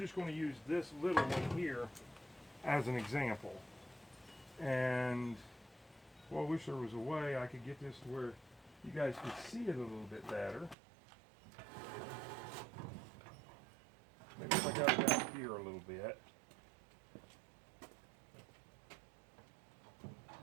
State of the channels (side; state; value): left; drops out; at 10.8 s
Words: going to use this little one here as an example. And well, I wish there was a way I could get this to where you guys could see it a little bit better. Maybe if I got it out here a little bit.